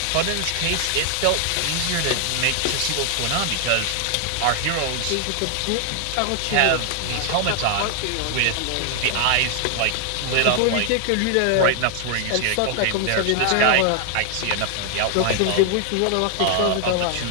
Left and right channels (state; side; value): different; both; correlation 0.00